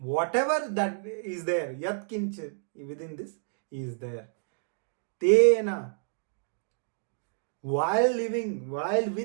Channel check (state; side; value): silent; left; digital silence